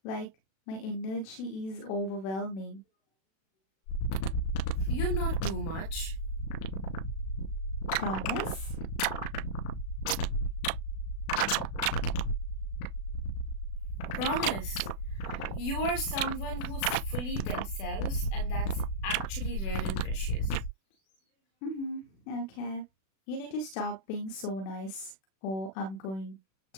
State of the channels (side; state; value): right; late; 36 ms